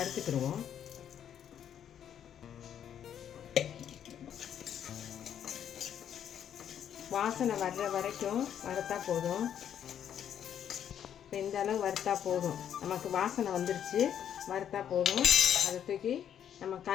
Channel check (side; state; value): right; quieter; 9.4 dB